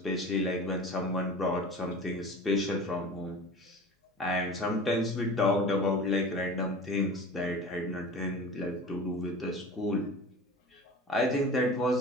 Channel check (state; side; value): normal; both; correlation 0.36